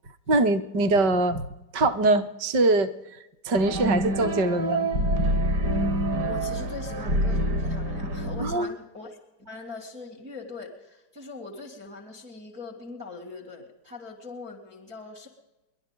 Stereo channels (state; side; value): late; left; 5.1 ms